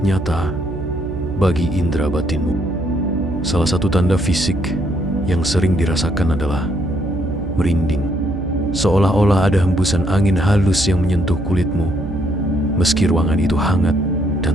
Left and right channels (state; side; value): noise; right; hum, 8 dB below the sound